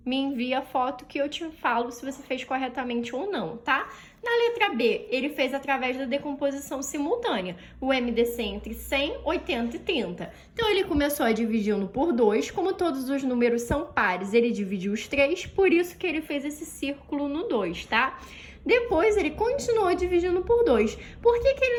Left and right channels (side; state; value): both; identical; correlation 1.00